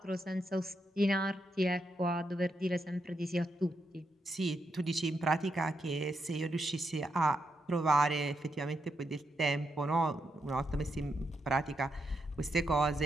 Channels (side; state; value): both; normal; correlation 0.82